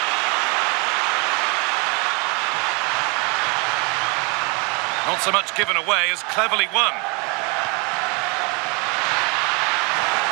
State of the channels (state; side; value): quieter; left; 31.2 dB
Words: Not so much given away as cleverly won.